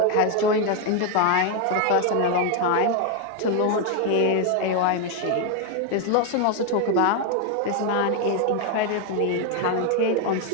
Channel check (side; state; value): both; different; correlation 0.01